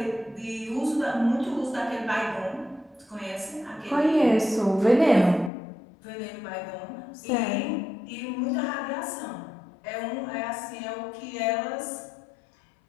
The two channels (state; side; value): drops out; right; at 5.5 s